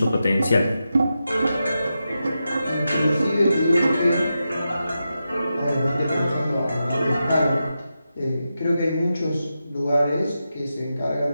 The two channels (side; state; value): both; inverted; correlation -0.89